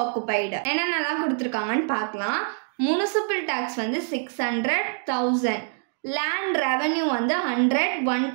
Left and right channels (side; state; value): left; silent; 62 dB below the other